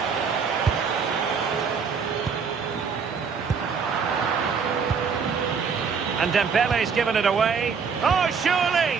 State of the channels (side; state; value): left; quieter; 5.9 dB